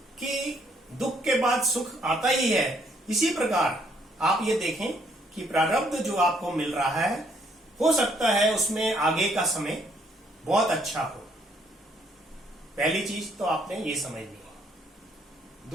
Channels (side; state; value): both; normal; correlation 0.68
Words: कि दुख के बाद सुख आता ही है। इसी प्रकार आप ये देखें कि प्रारब्ध जो आपको मिल रहा है, हो सकता है उसमें आगे का समय बहुत अच्छा हो। पहली चीज तो आपने ये समझ ली।